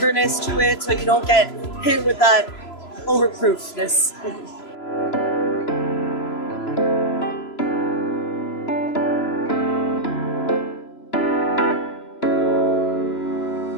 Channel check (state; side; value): late; right; 3.0 ms